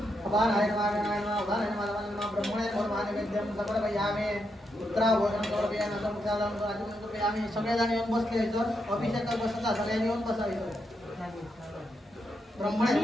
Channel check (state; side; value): normal; both; correlation 0.82